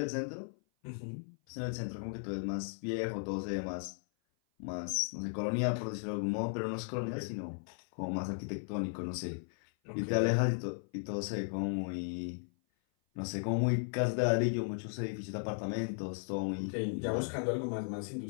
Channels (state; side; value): silent; right; 54 dB below the other